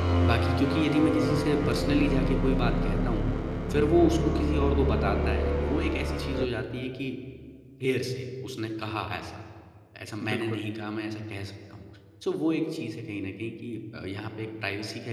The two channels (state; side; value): identical; both; correlation 1.00